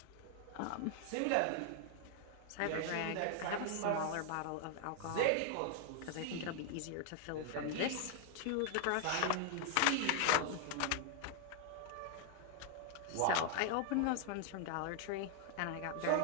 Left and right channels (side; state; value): both; different; correlation 0.00